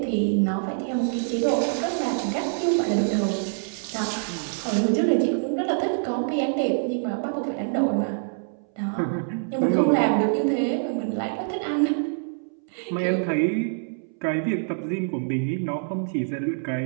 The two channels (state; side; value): silent; left; 61 dB below the other